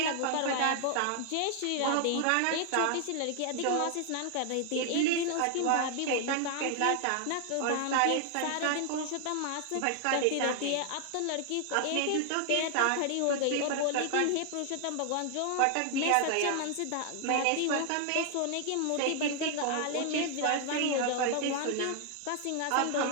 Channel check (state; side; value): different; both; correlation 0.00